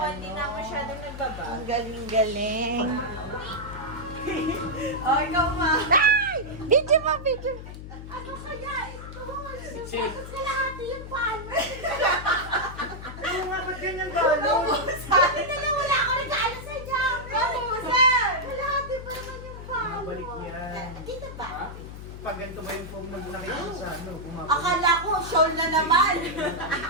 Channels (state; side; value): noise; left; hum, 11 dB below the sound